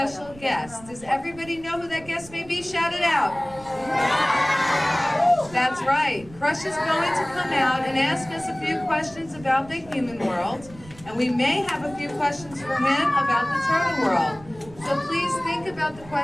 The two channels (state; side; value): noise; right; rumble, 21 dB below the sound